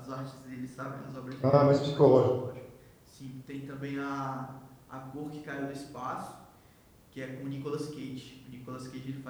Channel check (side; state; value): both; identical; correlation 1.00